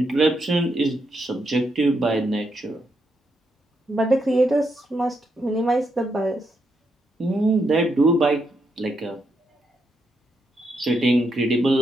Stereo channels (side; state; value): both; normal; correlation 0.80